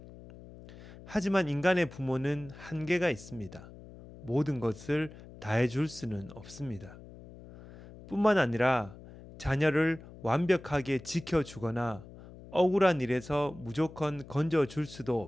하지만 인간의 부모는 한계가 있습니다. 모든 것을 다 해줄 수는 없습니다. 뿐만 아니라 자녀를 완벽하게 지켜주거나 억울한 일에서 무조건 건져줄 수도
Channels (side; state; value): left; noise; hum, 17 dB below the sound